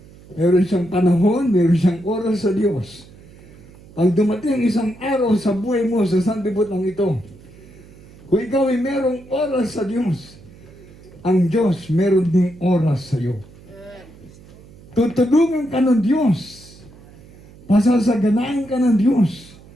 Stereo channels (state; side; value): noise; right; hum, 22 dB below the sound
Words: Meron siyang panahon, meron siyang oras sa Diyos. Pag dumating ang isang araw sa buhay mo sa sanlibutan ito, kung ikaw ay merong oras sa Diyos, ang Diyos meron ding oras sa iyo. Tutulungan ka ng Diyos. Pasasaganahin ka ng Diyos.